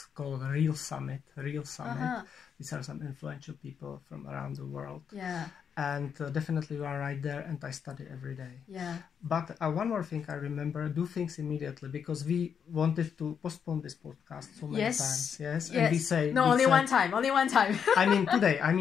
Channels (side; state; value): right; quieter; 7.3 dB